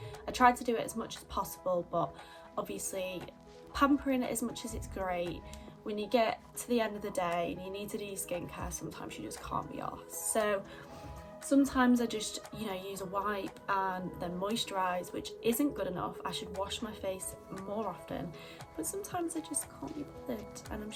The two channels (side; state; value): both; identical; correlation 1.00